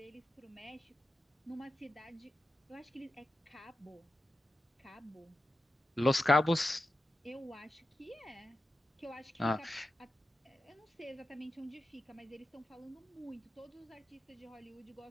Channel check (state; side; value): normal; both; correlation 0.90